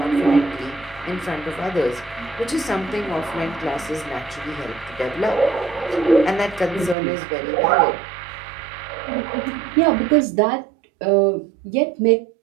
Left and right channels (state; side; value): drops out; left; at 7.0 s